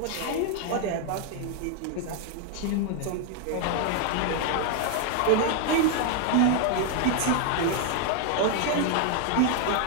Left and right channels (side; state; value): both; different; correlation 0.00